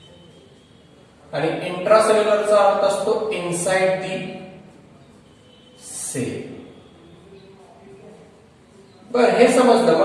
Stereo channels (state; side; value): identical; both; correlation 1.00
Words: आणि इंट्रा सेल्युलरचा अर्थ असतो इनसाइड दी सेल. बर, हे समजलं.